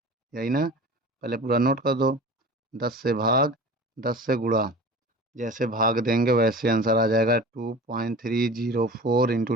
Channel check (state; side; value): normal; both; correlation 0.37